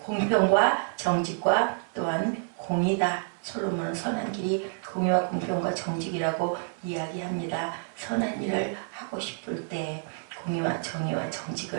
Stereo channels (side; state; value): left; silent; 59 dB below the other